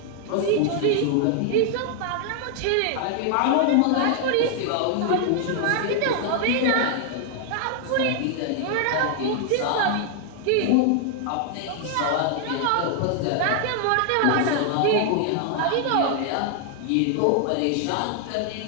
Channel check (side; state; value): both; different; correlation 0.00